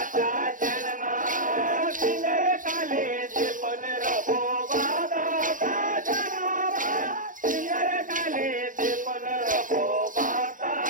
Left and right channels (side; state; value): left; late; 0.38 ms